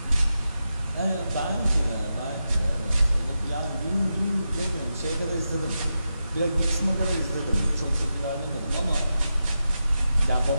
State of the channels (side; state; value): both; inverted; correlation -0.89